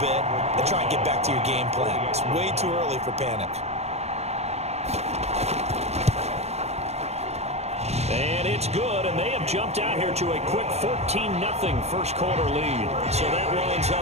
and try and get back to your game plan. It's way too early for panic. And it's good, and they have jumped out here to a quick 14-0 first quarter lead. So that lines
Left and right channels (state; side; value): late; left; 0.31 ms